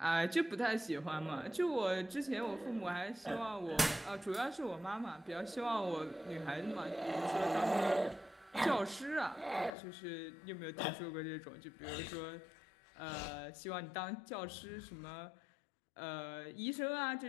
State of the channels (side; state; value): right; drops out; at 9.7 s